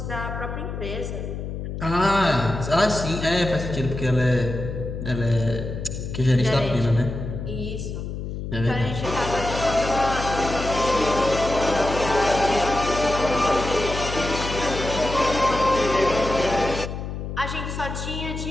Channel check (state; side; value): noise; left; hum, 6 dB below the sound